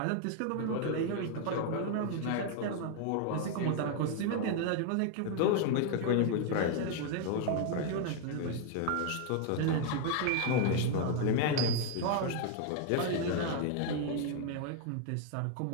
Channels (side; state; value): both; different; correlation 0.00